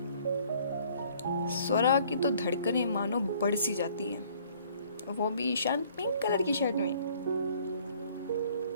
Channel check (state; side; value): inverted; both; correlation -0.58